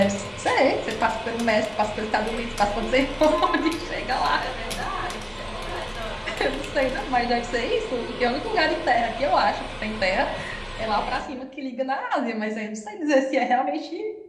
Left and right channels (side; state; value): both; identical; correlation 1.00